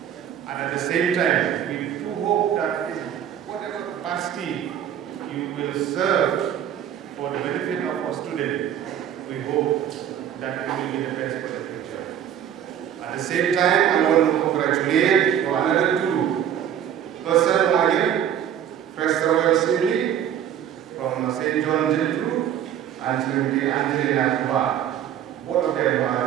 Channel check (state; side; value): quieter; left; 9.8 dB